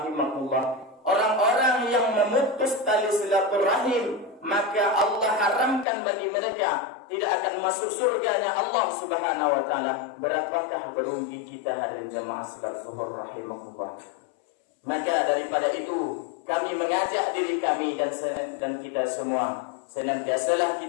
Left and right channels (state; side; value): drops out; right; at 5.9 s